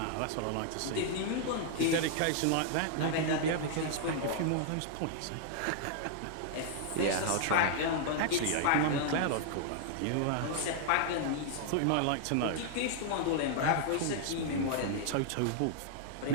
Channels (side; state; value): both; different; correlation -0.01